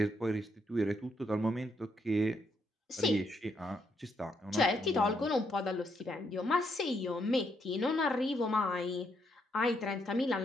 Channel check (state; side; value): normal; both; correlation 0.76